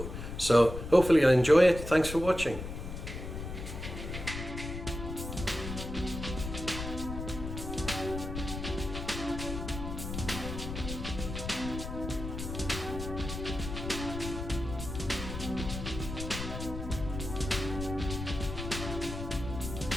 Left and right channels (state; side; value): noise; left; rumble, 7 dB below the sound